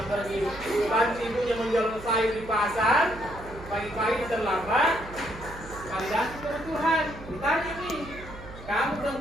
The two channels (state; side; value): noise; right; hum, 15 dB below the sound